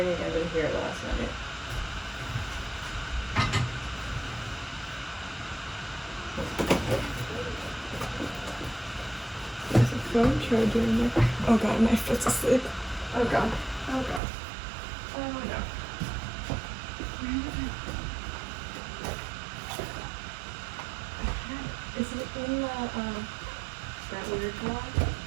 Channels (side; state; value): left; drops out; at 14.2 s